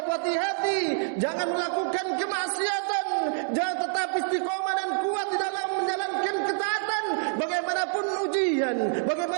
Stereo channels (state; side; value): silent; left; digital silence